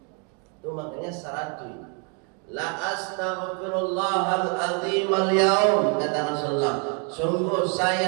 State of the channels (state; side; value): quieter; left; 37.8 dB